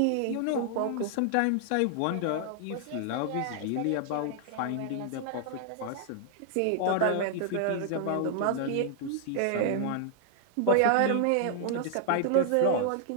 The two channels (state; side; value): different; both; correlation 0.00